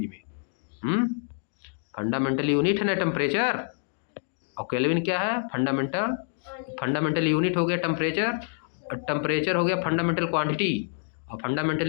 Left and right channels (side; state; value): right; silent; digital silence